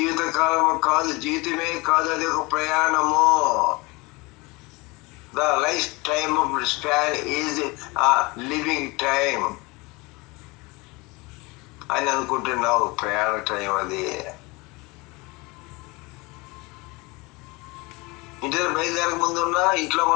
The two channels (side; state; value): right; quieter; 25.0 dB